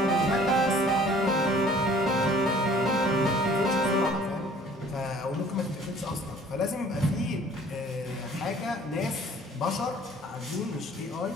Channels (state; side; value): normal; both; correlation 0.53